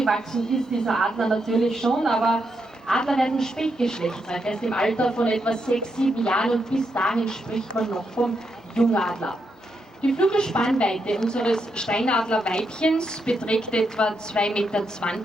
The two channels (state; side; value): normal; both; correlation 0.82